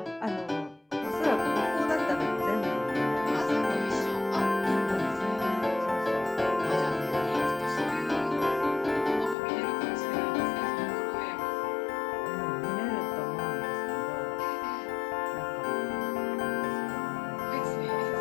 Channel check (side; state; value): right; drops out; at 9.3 s